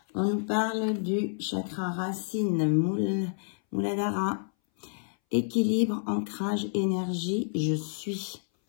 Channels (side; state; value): right; silent; 59 dB below the other